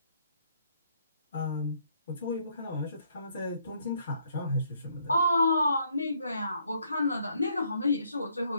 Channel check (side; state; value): both; inverted; correlation -0.69